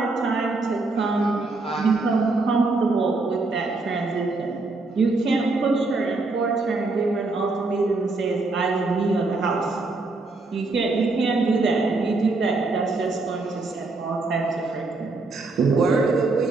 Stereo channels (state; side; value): quieter; left; 3.5 dB